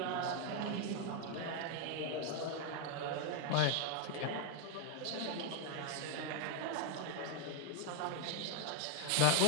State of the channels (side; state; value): both; different; correlation 0.00